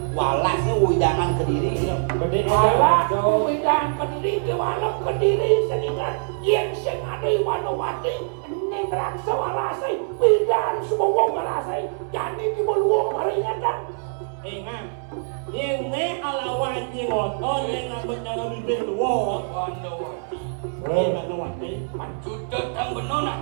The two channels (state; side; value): silent; left; digital silence